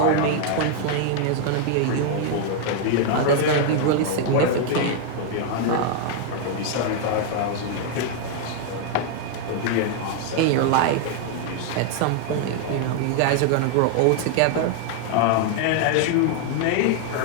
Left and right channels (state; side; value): different; both; correlation 0.00